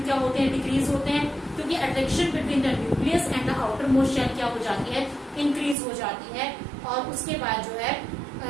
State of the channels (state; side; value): drops out; left; at 5.8 s